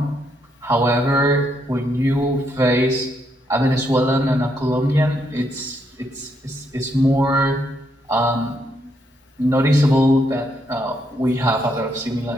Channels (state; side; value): normal; both; correlation 0.76